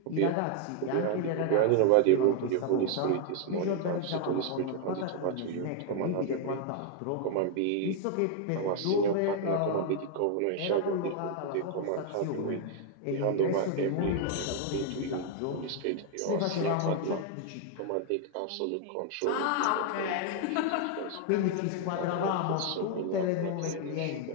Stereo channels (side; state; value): both; different; correlation 0.00